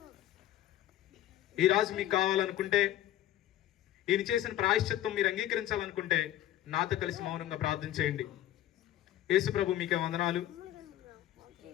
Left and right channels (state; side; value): quieter; right; 13.0 dB